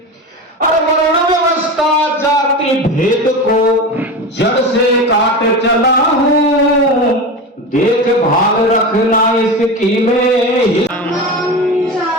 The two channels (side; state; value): both; normal; correlation 0.25